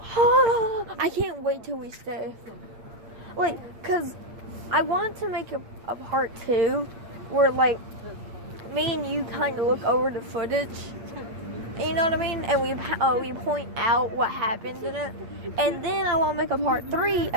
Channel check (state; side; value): late; left; 8.7 ms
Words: I can't wait till we stay. Like, cause I want to make a part 2 where like me and you kind of look over the footage. You know what I mean? And we point out what happened in it. And then I want to make a part 3